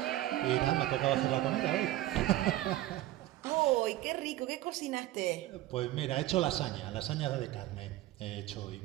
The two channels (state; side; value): quieter; left; 15.4 dB